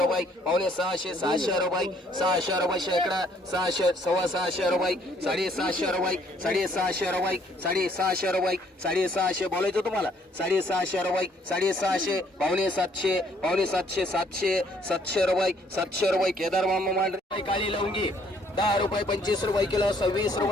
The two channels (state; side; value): normal; both; correlation 0.64